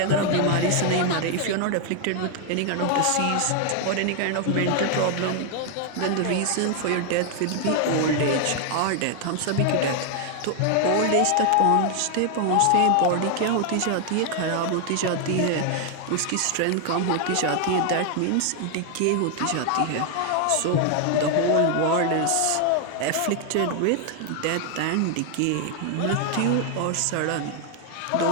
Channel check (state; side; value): different; both; correlation 0.00